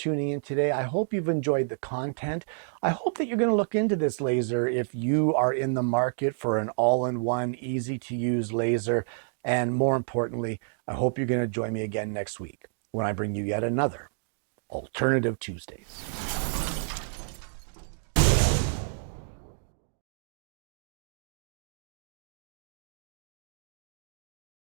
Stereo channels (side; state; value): left; silent; digital silence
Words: in today. I hope you've enjoyed the content. I hope that you're going to look into this laser if you are in the market for an all-in-one, easy-to-use laser. And more importantly, I hope you're going to join me again next week when I bring you yet another Alternative Tuesdays.